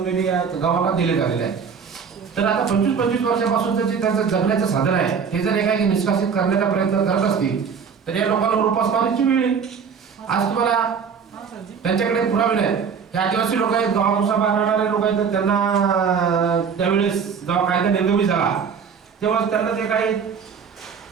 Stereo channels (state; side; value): quieter; left; 6.4 dB